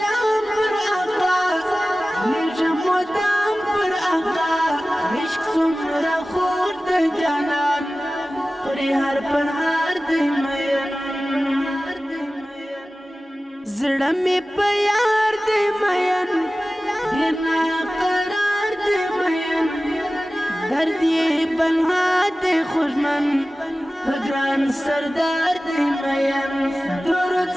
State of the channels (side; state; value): both; normal; correlation 0.96